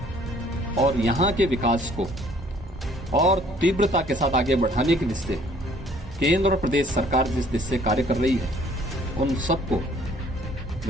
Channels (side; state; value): both; normal; correlation 0.58